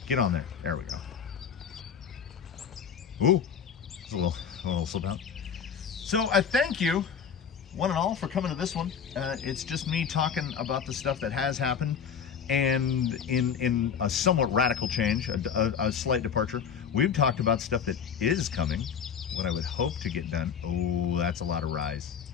Get on there. There we go. Ooh. It's a little slip out. So I thank you, one and all, for coming to this one. It's just me talking about the stuff that has happened, and in a somewhat radical change, a slight departure, we've talked about stuff that is coming, what I would hope to get done. Oh, that's a lot of rise.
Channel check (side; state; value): right; quieter; 7.2 dB